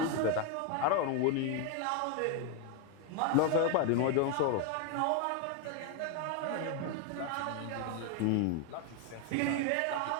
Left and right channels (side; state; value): both; different; correlation 0.02